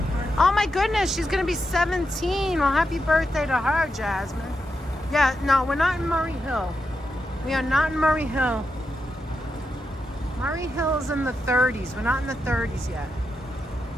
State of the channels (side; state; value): both; normal; correlation 0.86